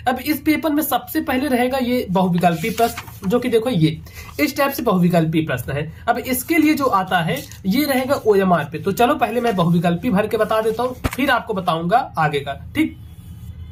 अब इस पेपर में सबसे पहले रहेगा ये बहुविकल्पी प्रश्न, जो कि देखो ये इस टाइप से बहुविकल्पी प्रश्न है। अब इसके लिए जो आता है ये रहेगा ओएमआर पे। तो चलो पहले मैं बहुविकल्पी भर के बता देता हूं, फिर आपको बताऊंगा आगे का। ठीक,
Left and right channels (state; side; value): identical; both; correlation 1.00